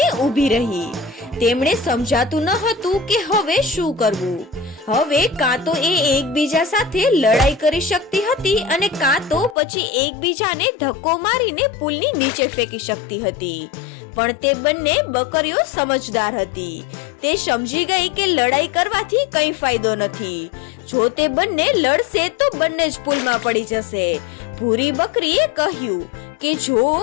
ઊભી રહી। તેમણે સમજાતું ન હતું કે હવે શું કરવું। હવે કાં તો એ એકબીજા સાથે લડાઈ કરી શકતી હતી અને કાં તો પછી એકબીજાને ધક્કો મારીને પુલની નીચે ફેંકી શકતી હતી। પણ તે બંને બકરીઓ સમજદાર હતી। તે સમજી ગઈ કે લડાઈ કરવાથી કંઈ ફાયદો નથી। જો તે બંને લડશે તો બંને જ પુલમાં પડી જશે। ભૂરી બકરીએ કહ્યું કે જો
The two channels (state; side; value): drops out; right; at 9.6 s